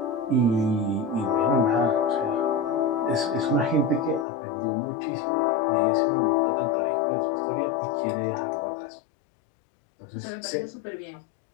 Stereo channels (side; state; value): right; drops out; at 4.2 s